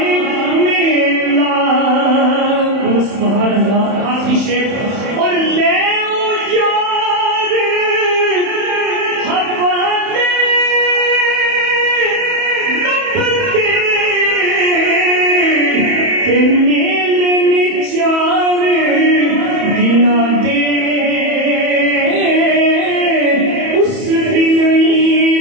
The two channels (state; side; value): late; left; 31 ms